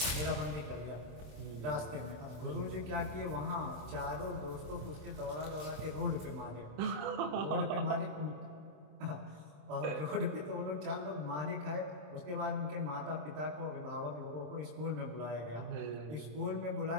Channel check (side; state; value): left; late; 27 ms